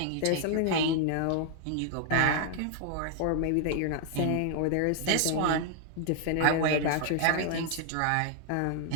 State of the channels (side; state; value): both; different; correlation 0.00